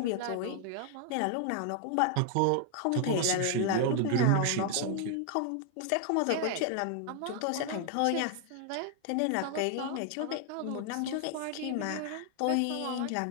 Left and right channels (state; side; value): different; both; correlation 0.00